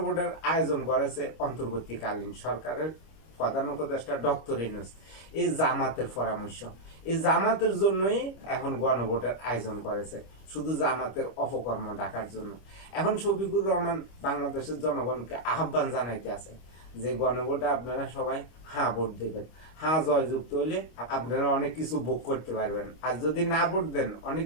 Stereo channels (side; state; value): right; late; 25 ms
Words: আয়োজন করেছে অন্তর্বর্তীকালীন সরকারের প্রধান উপদেষ্টা ডক্টর ইউনূস। এই জামাতের পরামর্শ, এই জামাতের জন্যই এখন গণভোটের আয়োজন করেছে, শুধু জামাতের অপকর্ম ঢাকার জন্য। এখন শফিকুর রহমান বাংলাদেশের জনগণকে আহ্বান জানাইতে আছে যে গণভোটে আপনারা সবাই হ্যাঁ ভোট দেবেন। হ্যাঁ জয়যুক্ত হইলে আপনারা অনেক কিছু ভোগ করতে পারবেন, আর যদি না ভোট দেন অনেক